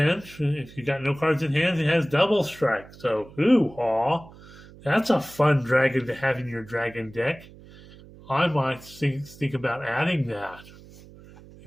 if you got no cards in hand, it has double strike. So, hoo-haw. That's a fun dragon to have in your dragon deck. I might think about adding that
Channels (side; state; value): right; noise; hum, 21 dB below the sound